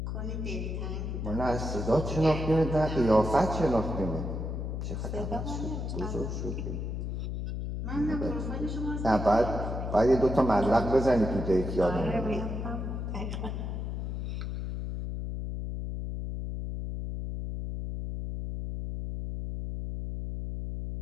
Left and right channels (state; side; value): noise; left; hum, 4 dB below the sound